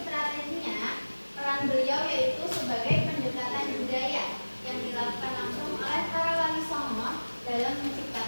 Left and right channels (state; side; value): inverted; both; correlation -1.00